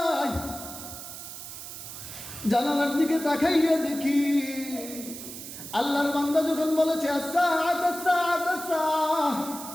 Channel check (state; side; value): noise; right; hiss, 11 dB below the sound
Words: জানালার দিকে তাকাইয়া দেখি আল্লাহর বান্দা যখন বলেছে